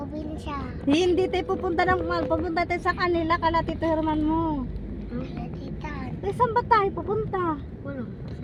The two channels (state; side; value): identical; both; correlation 1.00